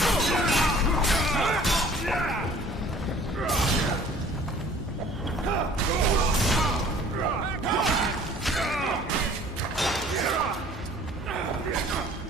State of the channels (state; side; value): normal; both; correlation 0.51